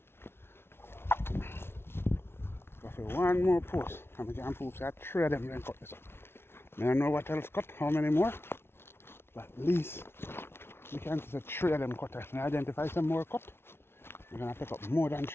Go for one more post. And we can prove that three of them then cut this up. I don't know what else cut, how many more. But at least we can see three of them cut. If we identify some more cut, we're going to pick up more than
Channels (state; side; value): late; right; 0.12 ms